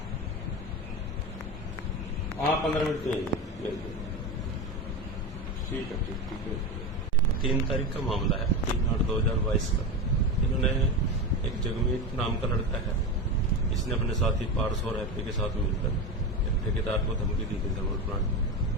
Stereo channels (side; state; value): both; normal; correlation 0.20